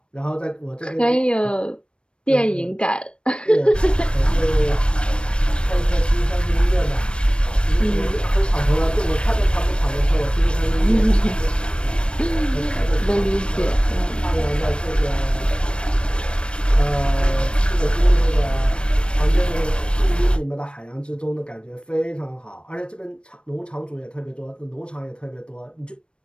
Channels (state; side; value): late; right; 0.056 ms